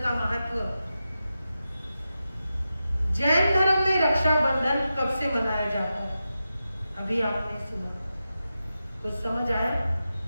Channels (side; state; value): both; inverted; correlation -0.91